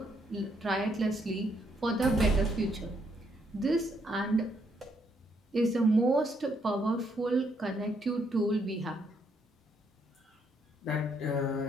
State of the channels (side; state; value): both; normal; correlation 0.73